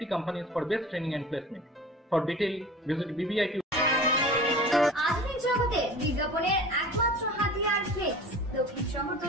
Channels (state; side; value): normal; both; correlation 0.39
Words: companies for best training and placement. For detail, visit BBIQ. আধুনিক জগতে বিজ্ঞাপনের একমাত্র হাতিয়ার flakes. দক্ষিণ